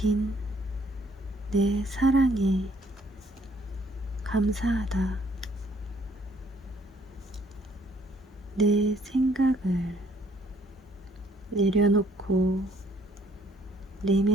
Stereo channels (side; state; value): both; normal; correlation 0.64